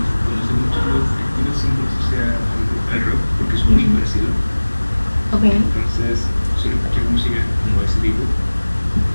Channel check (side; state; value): both; inverted; correlation -1.00